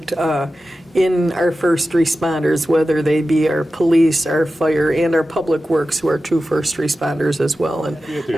in our first responders, whether they be our police, our fire, and our Public Works, who are 2 first responders as well. And At the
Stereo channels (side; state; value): both; normal; correlation 0.93